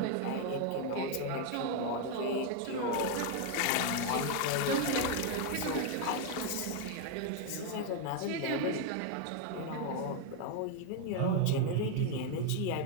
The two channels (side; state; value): both; different; correlation 0.01